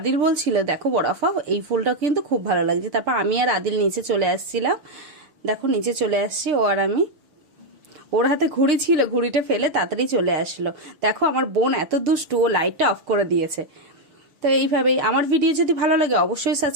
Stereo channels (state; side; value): late; left; 6.7 ms